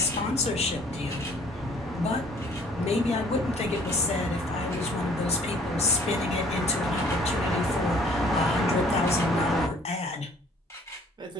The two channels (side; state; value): both; normal; correlation 0.57